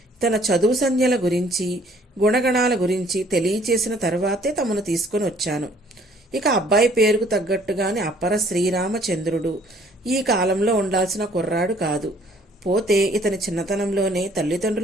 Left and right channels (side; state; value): both; normal; correlation 0.59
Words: తన చదువు సంధ్యల గురించి గుణగణాల గురించి తెలియచేసిన తర్వాతే తమను తీసుకొని వచ్చాను. ఇక అబ్బాయి పేరుకు తగ్గట్టుగానే అపర శ్రీరామచంద్రుడు. ఈ కాలంలో ఉండాల్సిన కుర్రాడు కాదు. పోతే ఇతని చిన్నతనంలోనే